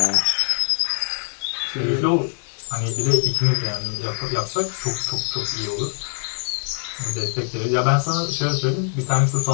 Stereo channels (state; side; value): silent; right; digital silence